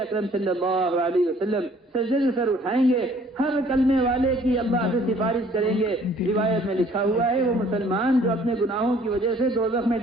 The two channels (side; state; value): both; normal; correlation 0.57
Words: اکرم صلی اللہ علیہ وسلم سجدے سے سر اٹھائیں گے، ہر کلمے والے کی اللہ سے سفارش کریں گے۔ روایت میں لکھا ہوا ہے وہ مسلمان جو اپنے گناہوں کی وجہ سے دوزخ میں